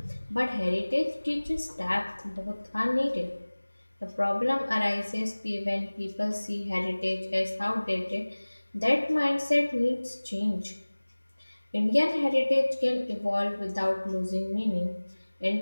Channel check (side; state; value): both; inverted; correlation -1.00